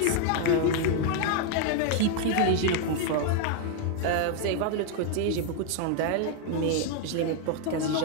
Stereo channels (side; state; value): both; different; correlation 0.00